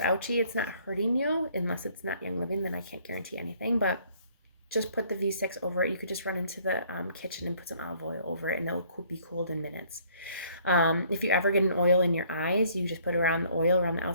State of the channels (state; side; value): inverted; both; correlation -0.61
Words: it's not hurting you, unless it's not Young Living, then I can't guarantee anything, but just put the V6 over it. You could just run into the kitchen and put some olive oil over it, and it'll be cooled in minutes. If you ever get an oil in your eyes, you just put around the oil around the